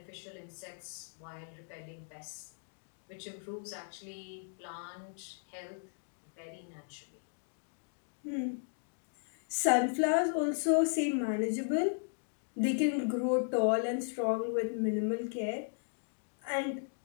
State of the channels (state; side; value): silent; right; digital silence